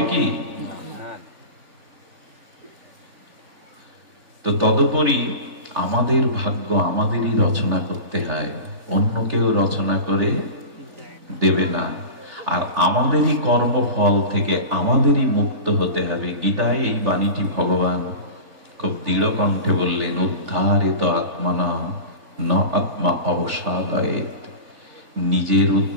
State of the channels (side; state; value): left; late; 3.4 ms